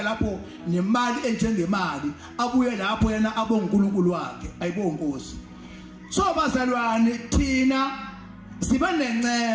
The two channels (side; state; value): both; identical; correlation 1.00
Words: lapho nemali enjengemali abuye lapho yena abonkulunkulu wakhe. Ayibonge Nkosi. So bazalwane thina siba